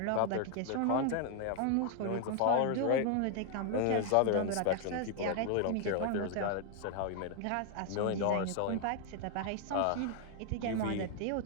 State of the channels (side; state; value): both; different; correlation 0.00